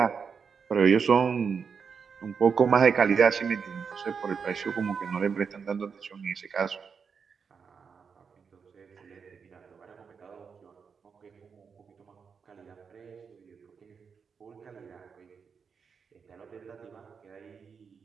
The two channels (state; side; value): quieter; left; 6.0 dB